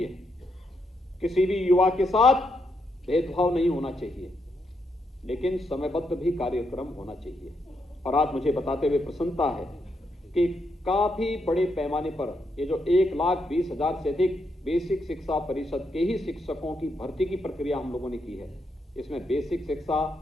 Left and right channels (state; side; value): normal; both; correlation 0.80